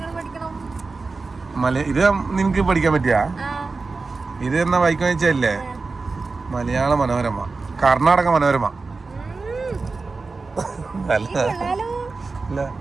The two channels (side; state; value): left; quieter; 4.0 dB